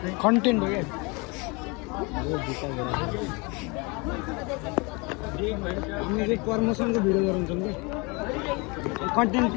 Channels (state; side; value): quieter; right; 28.6 dB